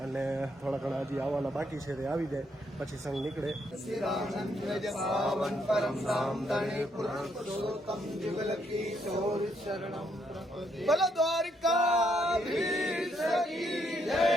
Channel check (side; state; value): both; normal; correlation 0.74